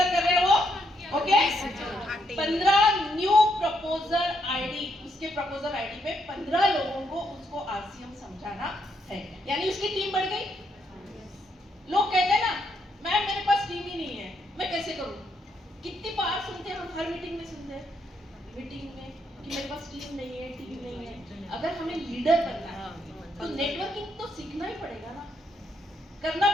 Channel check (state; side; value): normal; both; correlation 0.76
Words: कर रहे हो, ओके। 15 न्यू प्रपोजल आईडी, उसके प्रपोजल आईडी पे 15 लोगों को उसको आरसीएम समझाना है, यानी उसकी टीम बढ़ गई। लोग कहते हैं ना, मैम मेरे पास टीम ही नहीं है, मैं कैसे करूं? कितनी बार सुनते हैं हम, हर मीटिंग में सुनते हैं, मीटिंग में कि मेरे पास टीम नहीं है, टीम नहीं है। अगर हमें लीडर बनना है तो नेटवर्किंग तो सीखना ही पड़ेगा ना, करना